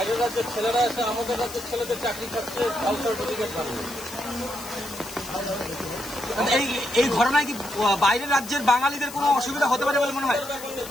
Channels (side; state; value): left; noise; hiss, 14 dB below the sound